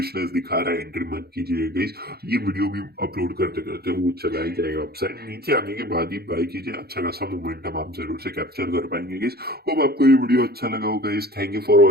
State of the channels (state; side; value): late; left; 0.46 ms